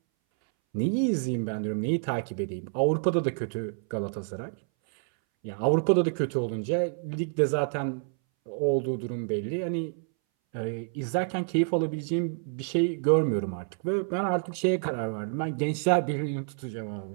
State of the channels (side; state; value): left; silent; 59 dB below the other